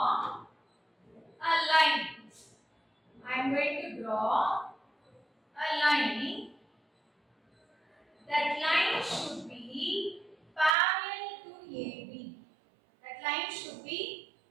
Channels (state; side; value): drops out; left; at 10.8 s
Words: a line. I am going to draw a line. That line should be parallel to AB. That line should be